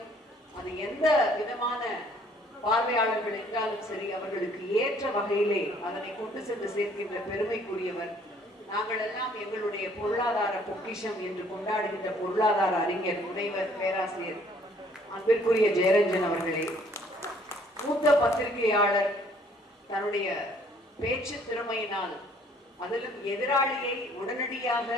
அது எந்த விதமான பார்வையாளர்கள் என்றாலும் சரி அவர்களுக்கு ஏற்ற வகையிலே அதனை கொண்டு சென்று சேர்க்கின்ற பெருமைக்குரியவர். நாங்கள் எல்லாம் எங்களுடைய பொருளாதார பொக்கிஷம் என்று கொண்டாடுகின்ற பொருளாதார அறிஞர் முனைவர் பேராசிரியர் அன்பிற்குரிய ஜெயரஞ்சன் அவர்களே, மூத்த பத்திரிகையாளர், தன்னுடைய பேச்சு திறமையினால் அதிலும் எதிராளியை உடனடியாக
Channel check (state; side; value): normal; both; correlation 0.60